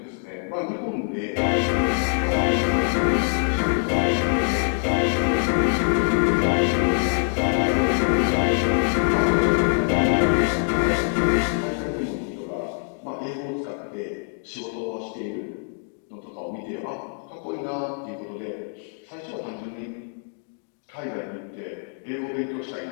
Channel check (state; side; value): silent; right; 58 dB below the other